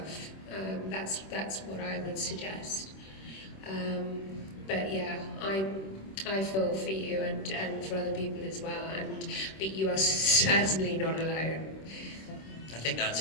That's what I would suggest. But yeah, I feel for you and for other people as well, but you are certainly not alone. I think that's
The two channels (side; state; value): right; late; 26 ms